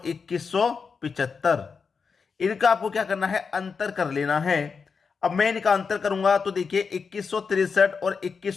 2175। इनका आपको क्या करना है? अंतर कर लेना है। अब मैं इनका अंतर करूंगा तो देखिए 2163 और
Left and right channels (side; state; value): right; quieter; 5.4 dB